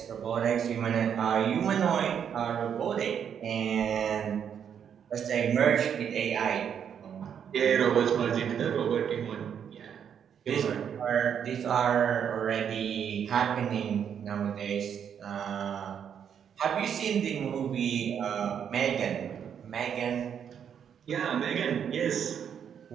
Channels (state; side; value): quieter; left; 8.2 dB